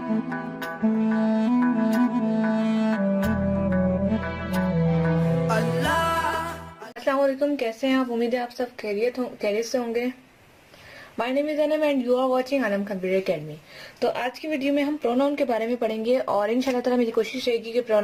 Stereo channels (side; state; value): both; identical; correlation 1.00